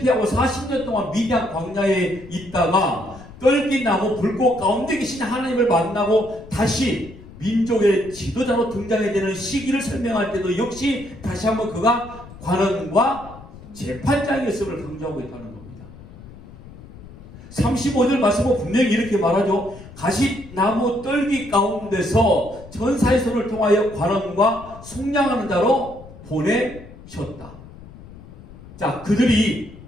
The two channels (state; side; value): noise; left; rumble, 18 dB below the sound